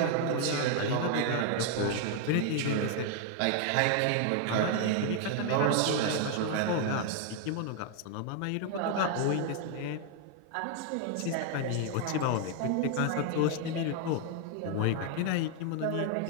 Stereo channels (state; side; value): different; both; correlation 0.00